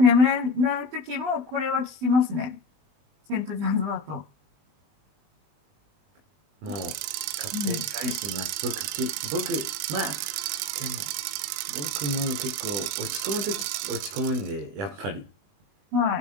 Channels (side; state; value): left; late; 20 ms